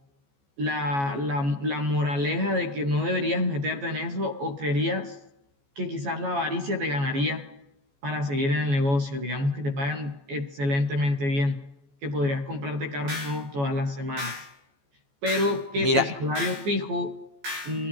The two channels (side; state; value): left; late; 14 ms